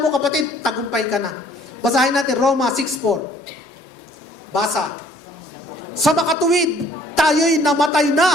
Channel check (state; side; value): normal; both; correlation 0.58